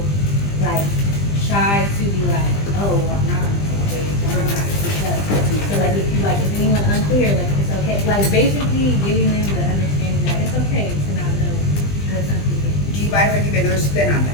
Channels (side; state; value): right; late; 20 ms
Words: like shy to be like, oh, I'm not on the same page, I'm not speak up. So like, if you like, is anyone unclear, like, it's okay, like basically giving them the understanding that it's okay to not know what something is. Do you mind if I give you another spin on